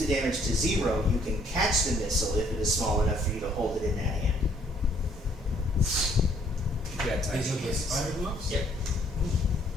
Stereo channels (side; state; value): both; normal; correlation 0.64